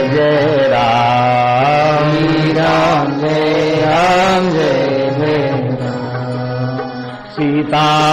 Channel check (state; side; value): identical; both; correlation 1.00